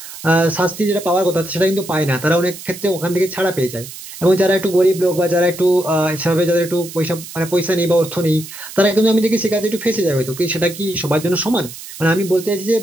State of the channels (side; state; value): right; noise; hiss, 14 dB below the sound